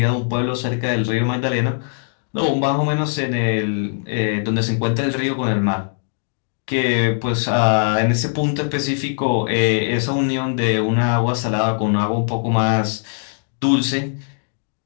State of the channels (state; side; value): silent; right; digital silence